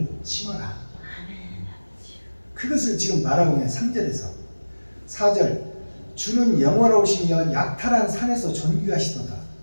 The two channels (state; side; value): inverted; both; correlation -1.00